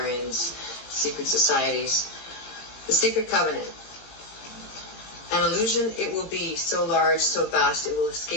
secret societies. The Secret Covenant. An illusion it will be, so large, so vast, it will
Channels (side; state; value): right; late; 17 ms